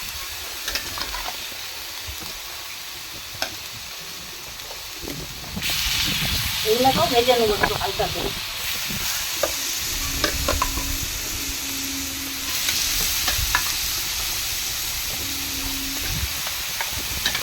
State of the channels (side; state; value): both; identical; correlation 1.00